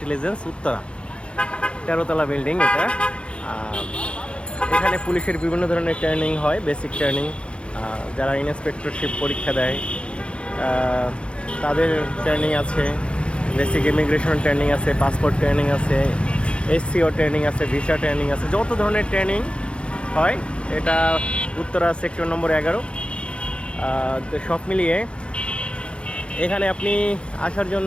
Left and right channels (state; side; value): late; right; 0.058 ms